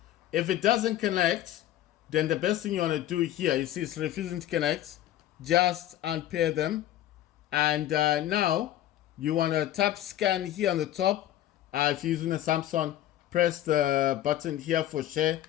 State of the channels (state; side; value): quieter; right; 12.8 dB